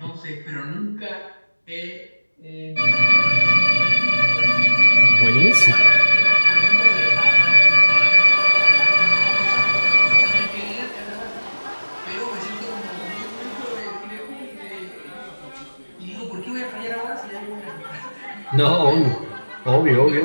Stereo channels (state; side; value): inverted; both; correlation -1.00